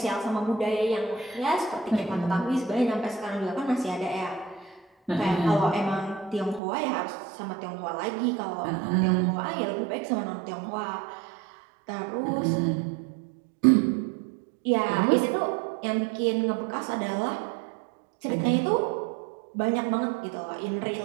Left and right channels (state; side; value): drops out; left; at 6.6 s